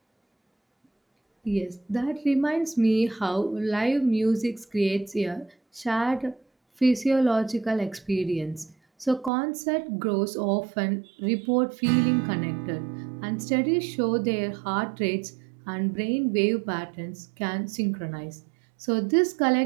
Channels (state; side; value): drops out; left; at 9.3 s